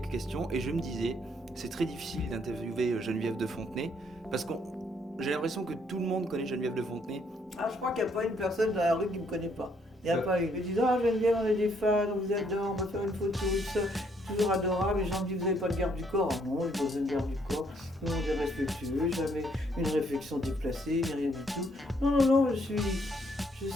questions, et je me disais, c'est très difficile d'interviewer Geneviève de Fontenay, parce que j'ai l'impression que tout le monde connaît Geneviève de Fontenay. Ah, je crois qu'il n'y a pas une personne dans la rue qui ne me connaît pas. Il n'y a pas une. Ils me disent ah, Geneviève, on est des fans, on vous adore, on va faire une photo, tout ça. Toujours adorable. Les gens me disent vous n'avez pas de garde du corps. Ah non, j'ai pas besoin de garde du corps. Tout le monde est respectueux, jamais une réflexion déplacée, ni rien du tout. Non, non, non, je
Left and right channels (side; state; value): both; normal; correlation 0.69